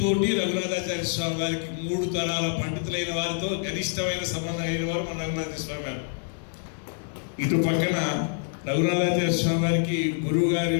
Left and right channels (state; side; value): silent; right; 61 dB below the other